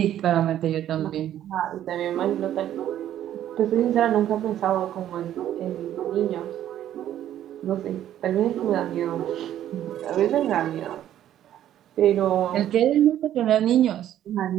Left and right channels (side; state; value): left; quieter; 11.6 dB